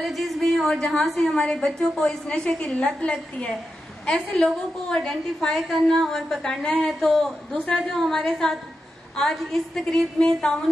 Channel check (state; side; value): normal; both; correlation 0.89